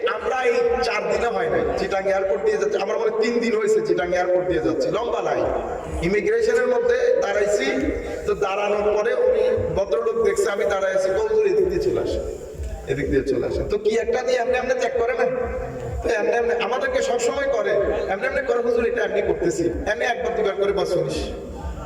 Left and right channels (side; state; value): both; identical; correlation 1.00